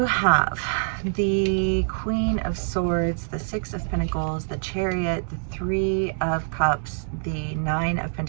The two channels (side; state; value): left; silent; 62 dB below the other